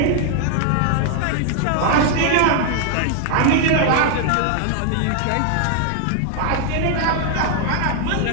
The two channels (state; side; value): different; both; correlation 0.00